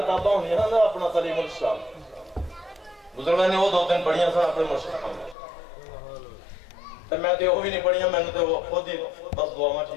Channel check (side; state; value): right; drops out; at 5.4 s